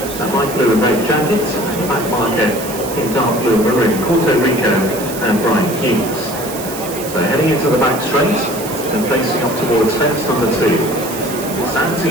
a light blue and red jacket, and the back marker in dark blue and maroon, Puerto Rico and Brian Hughes. So heading into the back straight and facing up towards fence number 2.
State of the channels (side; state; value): right; noise; hiss, 11 dB below the sound